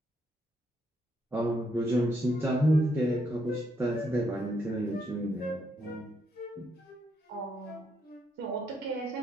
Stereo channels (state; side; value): normal; both; correlation 0.76